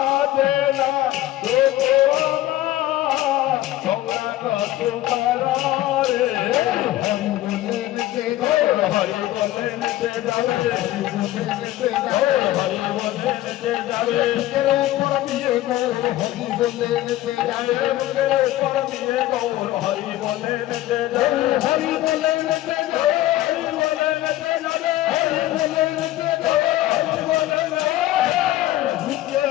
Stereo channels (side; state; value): right; quieter; 15.2 dB